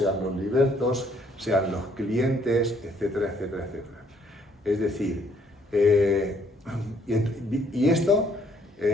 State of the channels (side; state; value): both; normal; correlation 0.66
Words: los libertos, sean los clientes, etcétera, etcétera, etcétera. Es decir, y esto